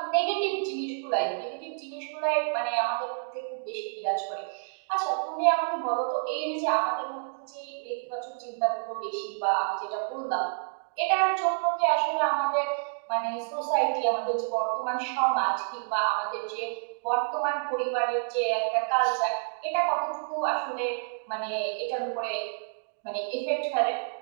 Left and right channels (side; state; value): left; silent; digital silence